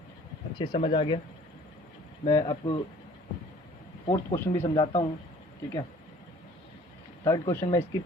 अच्छे समझ आ गया। मैं आपको 4th क्वेश्चन भी समझाता हूँ, ठीक है। 3rd क्वेश्चन मैं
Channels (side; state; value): both; normal; correlation 0.52